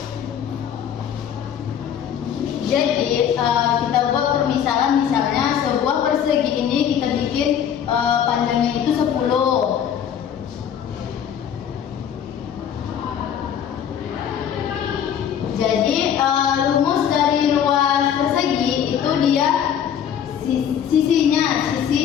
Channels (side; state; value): right; quieter; 8.9 dB